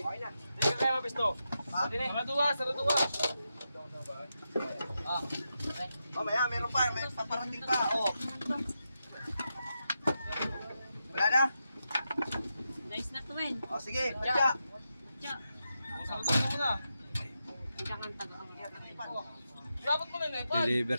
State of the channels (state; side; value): inverted; both; correlation -0.87